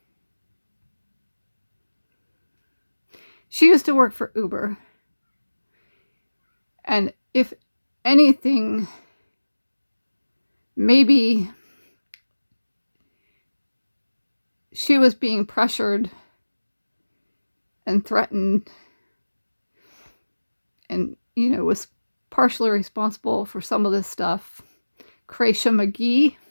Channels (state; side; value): inverted; both; correlation -1.00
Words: she used to work for Uber. And if anything, maybe she was being pressured and threatened and, was partially responsible for some of this stuff. Kreisha McGee.